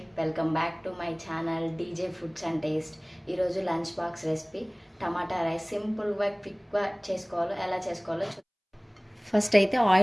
welcome back to my channel DJ foods and taste. ఈరోజు lunch box recipe tomato rice. సింపుల్గా క్విక్గా చేసుకోవాలో ఎలా చేసుకోవాలో ఫస్ట్ అయితే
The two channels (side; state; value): both; identical; correlation 1.00